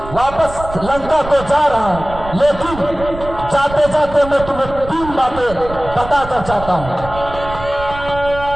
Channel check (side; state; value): right; noise; rumble, 12 dB below the sound